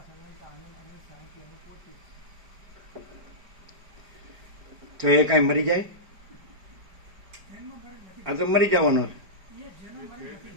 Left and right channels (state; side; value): late; left; 4.9 ms